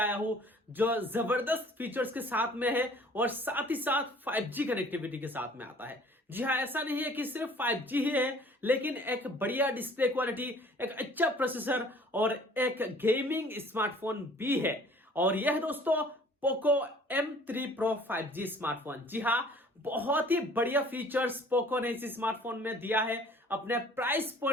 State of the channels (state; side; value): normal; both; correlation 0.53